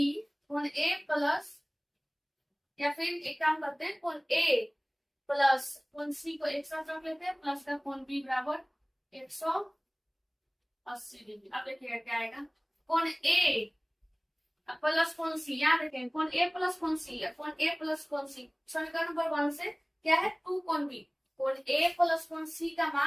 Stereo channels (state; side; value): identical; both; correlation 1.00